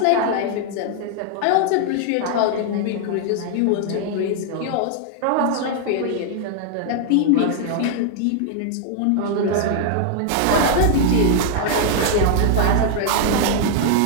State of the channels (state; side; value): different; both; correlation 0.00